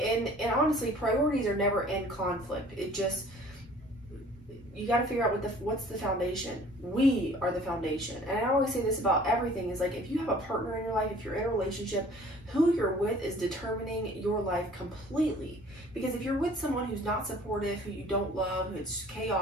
honestly, priorities are never in conflict. It just, you got to figure out what's the foundation. We are the foundation. And I always say this about everything is like, if you have a partner in your life, if you're in a relationship, who you're with is determining your life completely. Because if you're with someone who's not supportive, who you don't love, who's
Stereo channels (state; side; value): normal; both; correlation 0.51